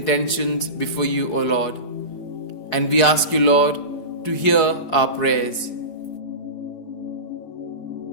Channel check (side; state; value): right; late; 4.7 ms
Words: before you, O Lord. And we ask you, Lord, to hear our prayers.